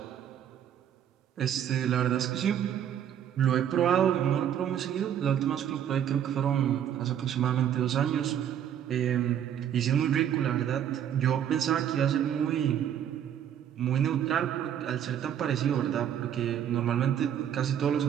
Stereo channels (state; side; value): quieter; left; 9.7 dB